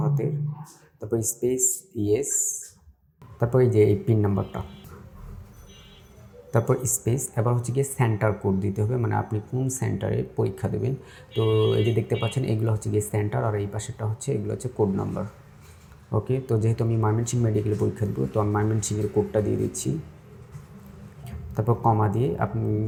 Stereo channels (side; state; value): both; identical; correlation 1.00